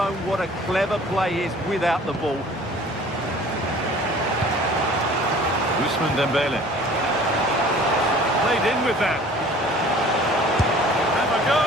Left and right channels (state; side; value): normal; both; correlation 0.48